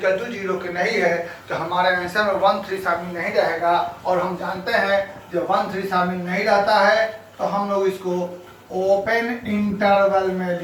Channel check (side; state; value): both; identical; correlation 1.00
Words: टू 0 के नहीं है तो हमारे आंसर में 1 3 शामिल नहीं रहेगा। और हम जानते हैं जब 1 3 शामिल नहीं रहता है तो हम लोग इसको ओपन इंटरवल में